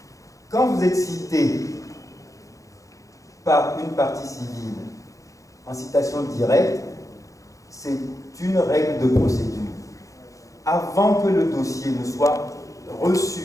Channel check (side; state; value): right; late; 0.16 ms